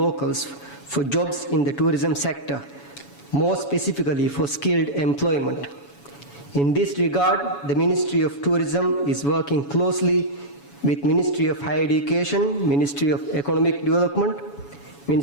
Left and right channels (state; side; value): late; right; 7.1 ms